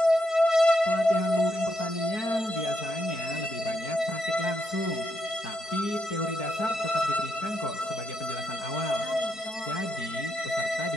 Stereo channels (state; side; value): late; right; 4.6 ms